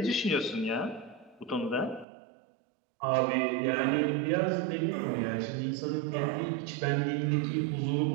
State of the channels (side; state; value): left; drops out; at 2.1 s